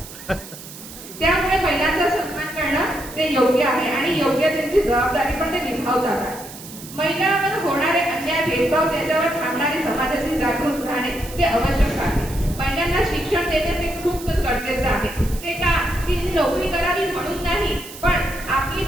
त्यामुळे महिलांचा सन्मान करणं ते योग्य आहे आणि योग्य त्यांची जबाबदारी पण ते निभावतात आहे. महिलांवर होणारे अन्याय, भेदभाव, त्याच्यावर थांबणारी समाजाची जागृत राहणे ते आवश्यक आहे. महिलांना शिक्षण देणे ते खूप गरजेचं आहे. ते का ती नोकरी करावी म्हणून नाही, पण आपली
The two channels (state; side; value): noise; right; hiss, 15 dB below the sound